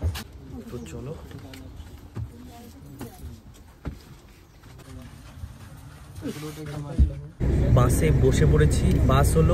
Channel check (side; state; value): both; identical; correlation 1.00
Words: তো চলো। বাসে বসে পড়েছি। বাস হলো